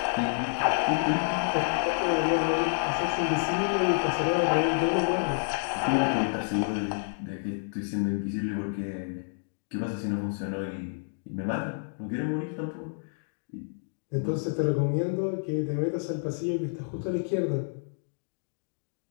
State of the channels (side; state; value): right; silent; digital silence